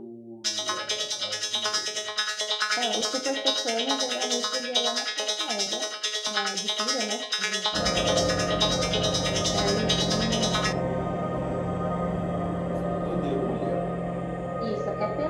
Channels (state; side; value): identical; both; correlation 1.00